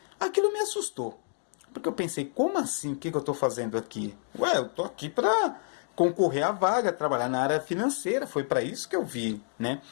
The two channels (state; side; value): silent; right; 58 dB below the other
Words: Aquilo me assustou, porque eu pensei, como assim, o que eu estou fazendo aqui? Ué, eu estou aqui para concorrer à vaga, trabalhar na área financeira, foi para isso que eu vi, né?